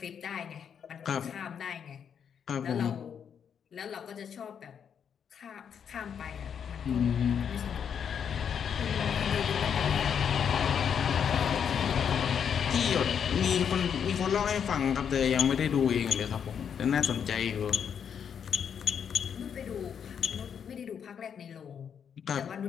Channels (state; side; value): quieter; right; 7.7 dB